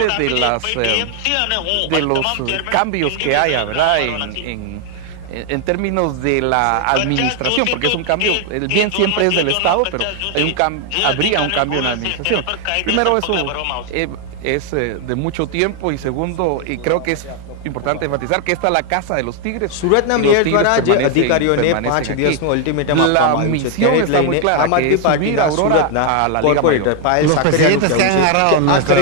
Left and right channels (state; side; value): different; both; correlation 0.00